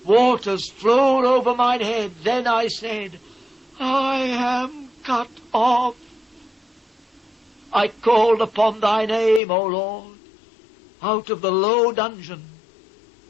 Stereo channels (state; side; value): drops out; right; at 9.4 s